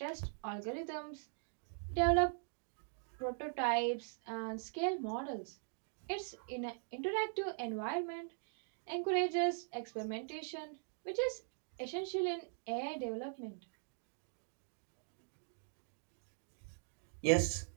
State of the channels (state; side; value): silent; left; digital silence